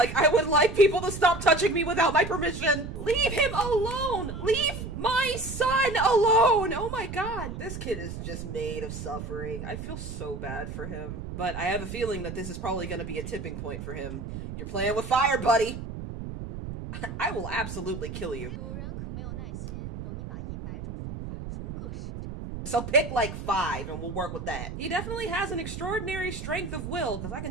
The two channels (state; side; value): noise; right; rumble, 8 dB below the sound